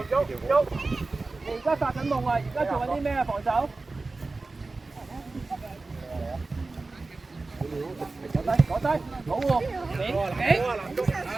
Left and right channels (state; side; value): quieter; left; 3.5 dB